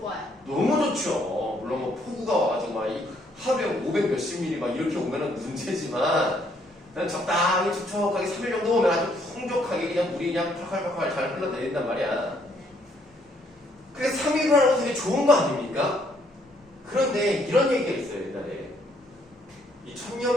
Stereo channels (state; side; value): normal; both; correlation 0.69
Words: 너무 좋죠. 물론 뭐 폭우가 와가지고 막 하루에 500 몇십 미리 막 이렇게 오면은 문제지만 그냥 적당히 촉촉하게 3일 정도 오면 아주 풍족하게 그냥 물이 그냥 팔팔팔팔 잘 흘러내린단 말이야. 그래서 3일을 하는 건 되게 좋은 거 아닙니까? 그런데 이런 얘기가 있어요. 옛날에 이